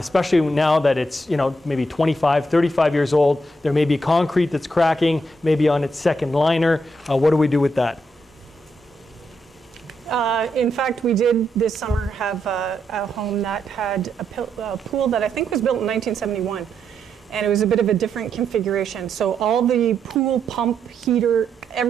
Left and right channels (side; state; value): both; normal; correlation 0.80